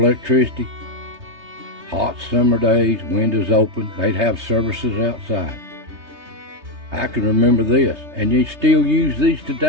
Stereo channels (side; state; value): left; late; 3.3 ms